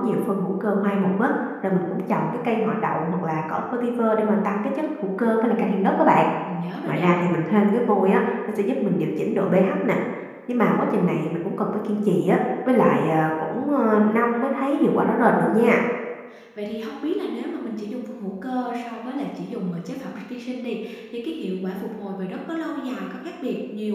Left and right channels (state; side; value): identical; both; correlation 1.00